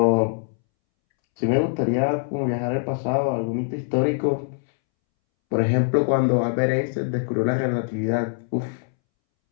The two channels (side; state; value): right; silent; 63 dB below the other